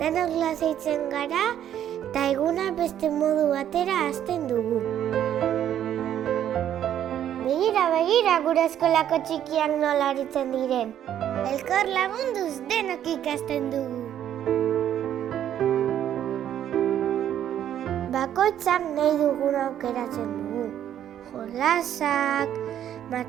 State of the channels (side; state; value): left; quieter; 10.5 dB